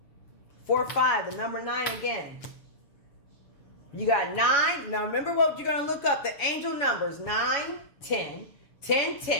4-5, the number 9 again. You got 9. Now remember what you're going to look up. The angel numbers 9, 10, 10,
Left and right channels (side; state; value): right; late; 7.1 ms